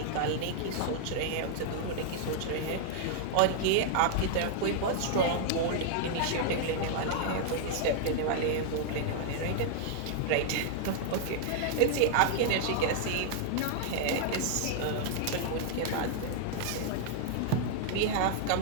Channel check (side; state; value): both; different; correlation -0.01